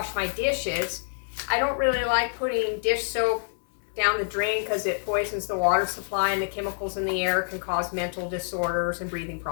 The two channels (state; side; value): silent; right; 60 dB below the other